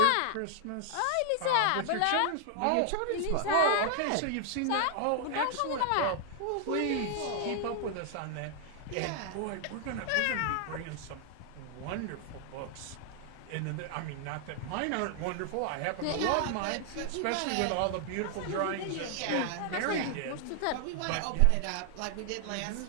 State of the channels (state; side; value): different; both; correlation 0.00